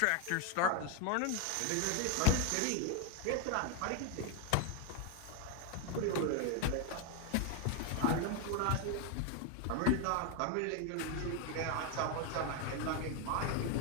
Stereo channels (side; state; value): both; different; correlation 0.01